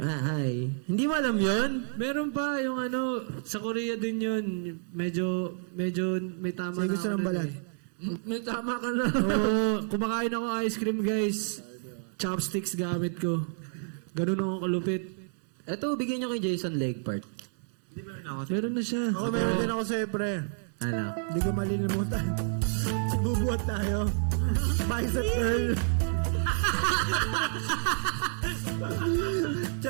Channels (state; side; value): silent; left; digital silence